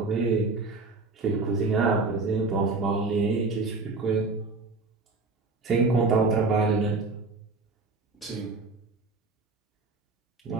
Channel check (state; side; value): quieter; left; 3.7 dB